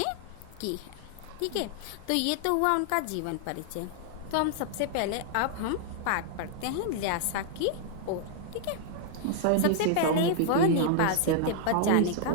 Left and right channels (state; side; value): different; both; correlation -0.01